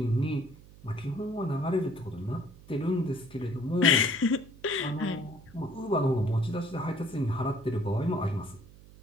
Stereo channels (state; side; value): noise; right; hum, 21 dB below the sound